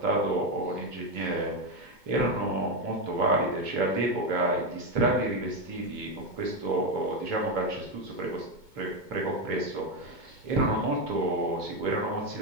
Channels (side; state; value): left; late; 2.2 ms